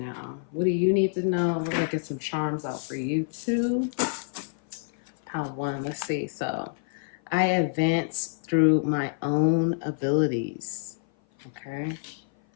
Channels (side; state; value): right; silent; 56 dB below the other